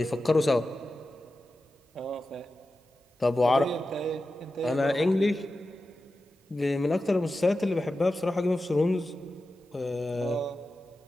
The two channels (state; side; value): normal; both; correlation 0.93